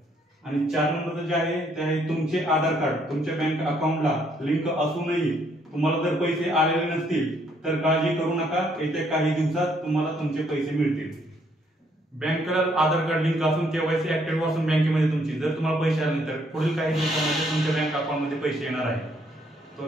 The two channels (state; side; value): normal; both; correlation 0.69